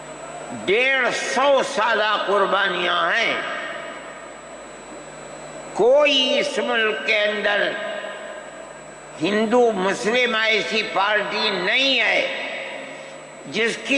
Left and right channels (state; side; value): identical; both; correlation 1.00